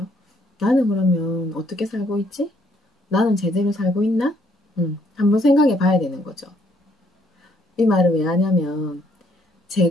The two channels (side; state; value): both; normal; correlation 0.68